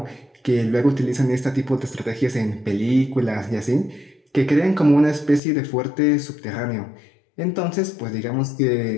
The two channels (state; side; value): drops out; right; at 5.4 s